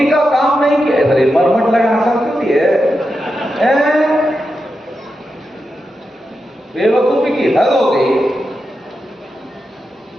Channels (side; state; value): both; normal; correlation 0.88